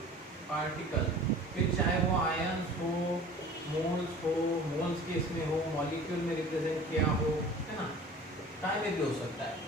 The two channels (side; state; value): both; normal; correlation 0.43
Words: पार्टिकल, फिर चाहे वो आयंस हो, मोल्स के इसमें हो, मॉलिक्यूल में रिप्रेजेंट किया हो, है ना, टाइम में भी हो सकता है।